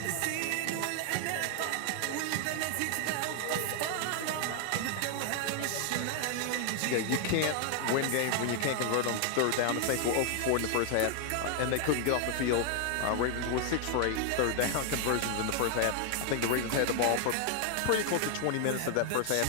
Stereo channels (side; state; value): both; different; correlation 0.00